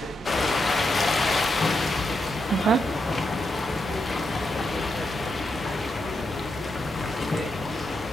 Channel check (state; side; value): normal; both; correlation 0.83